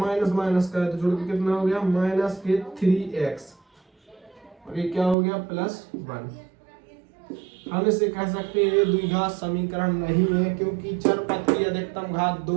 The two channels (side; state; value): left; drops out; at 5.2 s